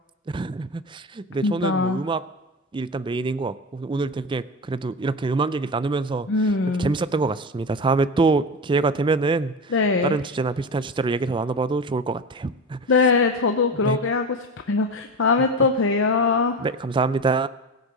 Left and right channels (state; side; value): normal; both; correlation 0.25